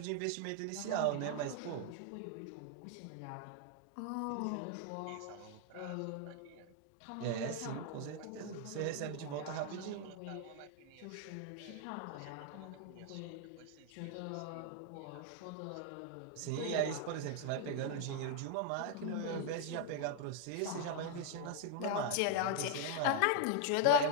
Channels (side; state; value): both; different; correlation 0.00